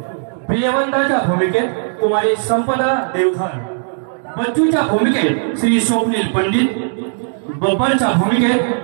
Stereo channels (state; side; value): silent; left; digital silence